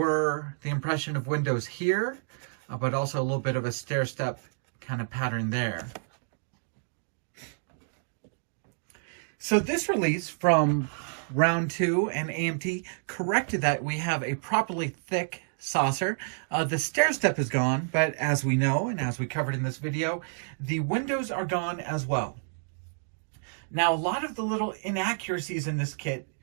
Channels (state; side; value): silent; left; digital silence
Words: the impression of windows here, but also a little bit of a stair step kind of pattern there. So this release from round 2 and AMT corrected that. We have a properly thick saucer. The stair step is gone, but as we know, and as we covered in this video, the windows are gone as well. Now, a lot of the little inaccuracies in this kit